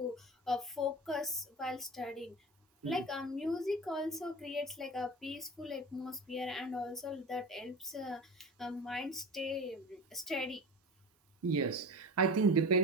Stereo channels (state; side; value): normal; both; correlation 0.32